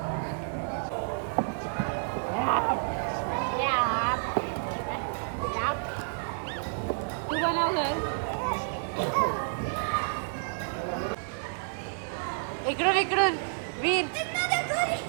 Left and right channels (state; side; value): silent; left; digital silence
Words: तू बनव घर. इकडून इकडून वीर.